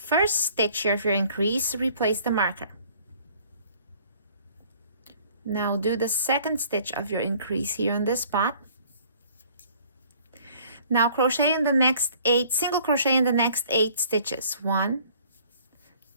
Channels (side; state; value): both; inverted; correlation -0.55